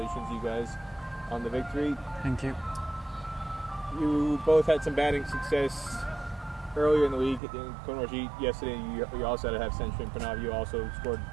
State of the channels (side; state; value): left; drops out; at 7.4 s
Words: you guys, on the victory. Thank you. You both had some batting success earlier in the week. Kunwarjeet, yesterday, you also had a half century, and Prannav, you also scored